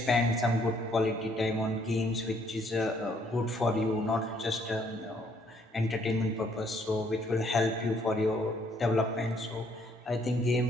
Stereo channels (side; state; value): both; normal; correlation 0.66